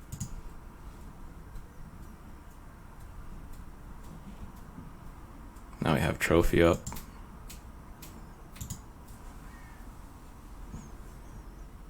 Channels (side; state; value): both; identical; correlation 1.00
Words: Now we have Trophy up.